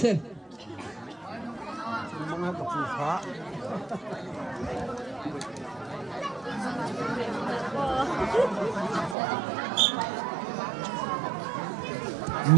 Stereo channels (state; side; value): drops out; left; at 9.2 s